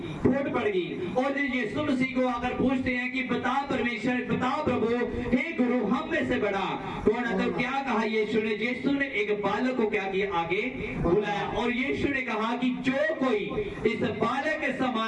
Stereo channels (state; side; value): identical; both; correlation 1.00